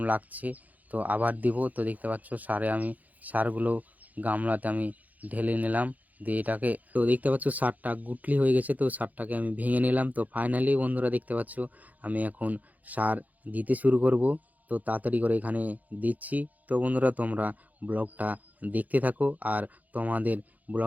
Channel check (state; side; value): late; left; 0.079 ms